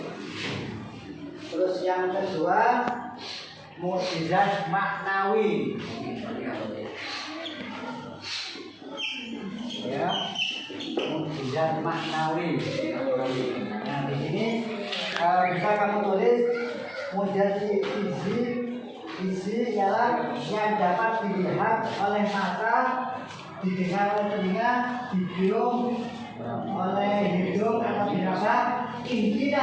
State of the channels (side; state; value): both; identical; correlation 1.00